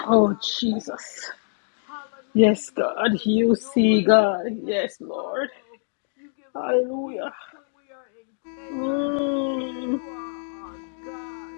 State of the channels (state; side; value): silent; right; digital silence